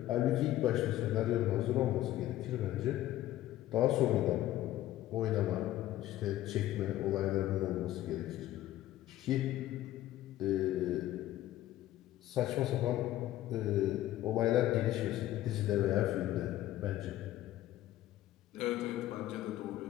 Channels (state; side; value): quieter; right; 14.3 dB